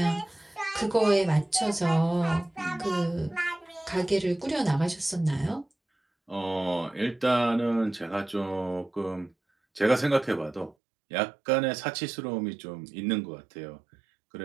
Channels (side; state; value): left; drops out; at 10.8 s